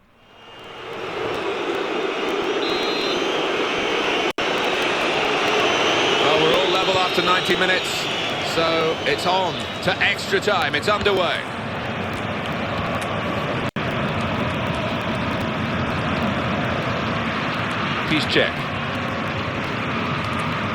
Well, we're all level after 90 minutes, so it's on to extra time. It's underway. Piszczek.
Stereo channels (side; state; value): both; identical; correlation 1.00